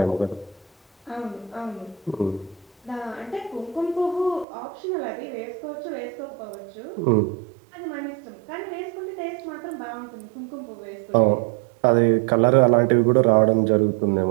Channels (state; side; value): drops out; left; at 4.5 s